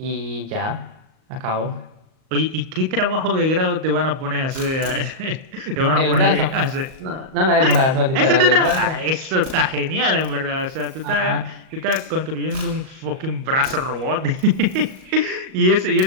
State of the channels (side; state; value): left; late; 38 ms